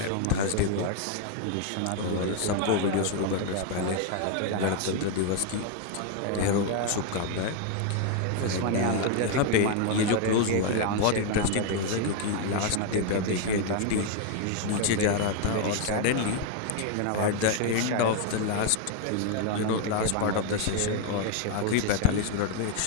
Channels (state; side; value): different; both; correlation 0.01